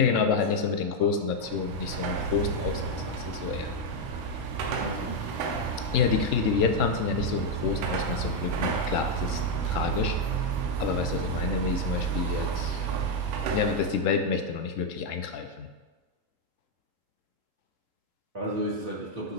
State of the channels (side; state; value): left; late; 3.8 ms